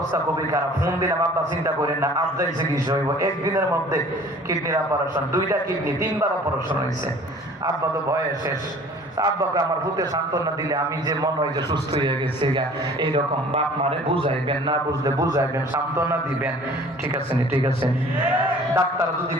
খুবই খারাপ। ফোন দিলাম, আব্বা চিন্তা করেন না, আব্বা চিকিৎসা হইব একদিনের মধ্যে। কিডনির অপারেশন, দুইটা কিডনি 3 বার অপারেশন হয়েছে। আব্বা তো ভয়ে শেষ। আব্বাকে আমার ভূতে সান্ত্বনা দিলে আমি যে মনে হয় যে সুস্থ হয়ে গেছে, এইরকম বাপ মারে বুঝাইবেন, না বুঝলে বুঝাইবেন, সান্ত্বনা দিবেন। ঠিক আছে নি? ঠিক আছে। ডাক্তার যদি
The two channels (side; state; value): both; normal; correlation 0.49